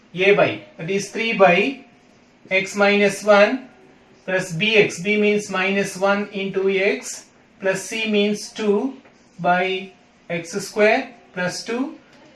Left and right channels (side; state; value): both; identical; correlation 1.00